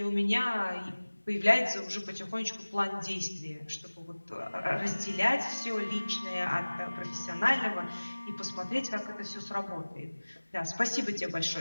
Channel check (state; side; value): inverted; both; correlation -1.00